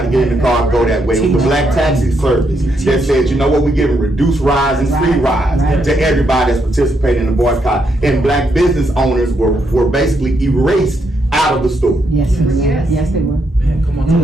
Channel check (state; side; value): normal; both; correlation 0.78